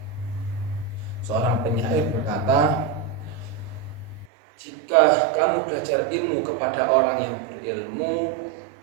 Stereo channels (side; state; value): left; drops out; at 4.3 s